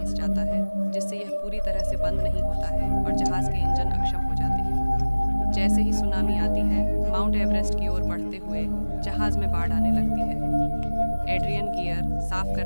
जाता है, जिससे यह पूरी तरह से बंद नहीं होता है और जहाज के इंजन अक्षम हो जाते हैं। जैसे ही सुनामी आती है, माउंट एवरेस्ट की ओर बढ़ते हुए जहाज में बाढ़ आने लगती है। एड्रियन गियर साफ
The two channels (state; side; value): inverted; both; correlation -1.00